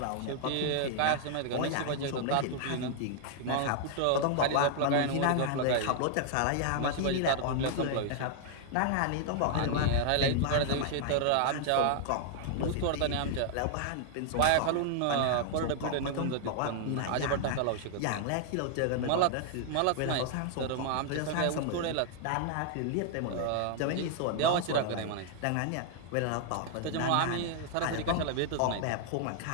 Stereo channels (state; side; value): different; both; correlation -0.01